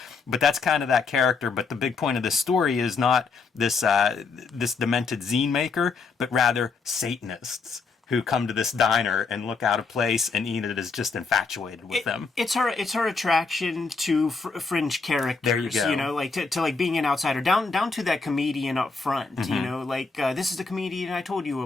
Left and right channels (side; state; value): right; quieter; 4.6 dB